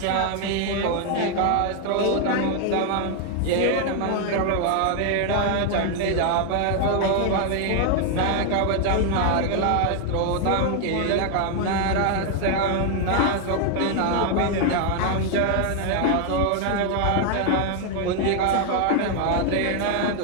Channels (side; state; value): both; different; correlation 0.00